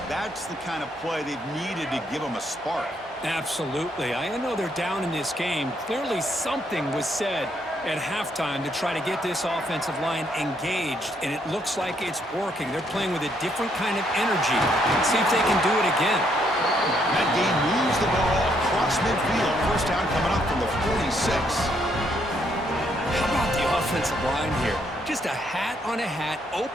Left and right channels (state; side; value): normal; both; correlation 0.72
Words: That's the kind of play they've needed to give them a spark. Absolutely. I know they're down in this game. Clearly something was said at halftime to try to get this offensive line engaged, and it looks like it's working. They're playing with a different kind of energy. Let's see if they can do it again. That game moves the ball across midfield. First down coming up from the 46. How about the offensive line here? Just a hat on a hat,